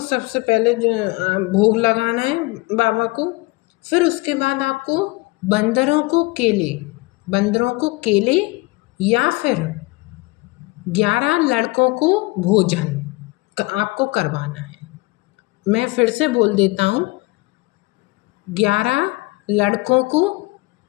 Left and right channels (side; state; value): right; quieter; 23.3 dB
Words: सबसे पहले जो भोग लगाना है बाबा को। फिर उसके बाद आपको बंदरों को केले या फिर 11 लड़कों को भोजन आपको करवाना है। मैं फिर से बोल देता हूँ, 11 लड़कों को